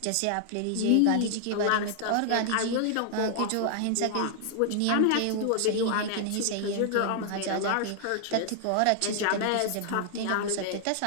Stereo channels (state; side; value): different; both; correlation -0.01